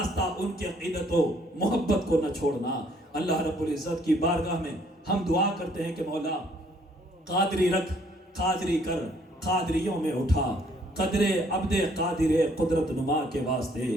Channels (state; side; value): normal; both; correlation 0.64